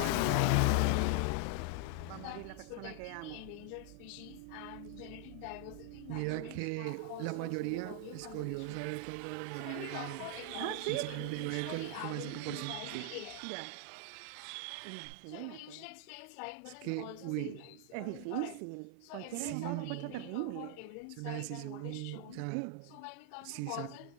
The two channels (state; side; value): different; both; correlation 0.00